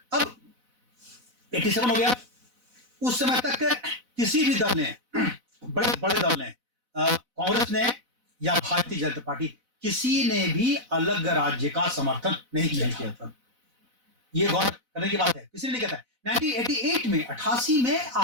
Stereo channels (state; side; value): late; left; 4.0 ms